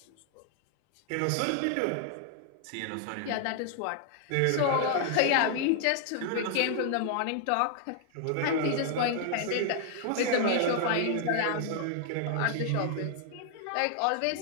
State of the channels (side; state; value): both; different; correlation 0.00